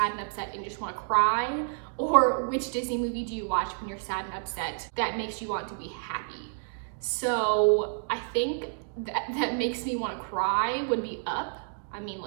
and upset and you just want to cry? Or which Disney movie do you watch when you're sad and upset that makes you want to be happy? So I think that makes me want to cry would be Up. I mean,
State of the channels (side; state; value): left; silent; digital silence